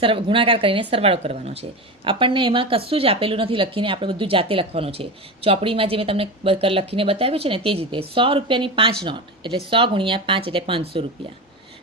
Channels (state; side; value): normal; both; correlation 0.23